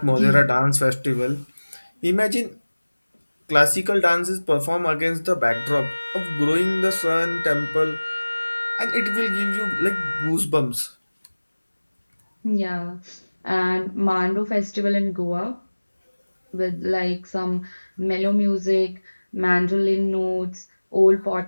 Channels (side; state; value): both; inverted; correlation -1.00